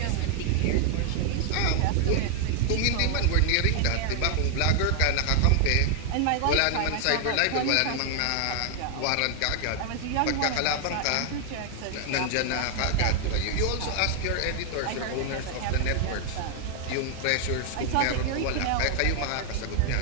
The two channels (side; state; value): both; different; correlation 0.00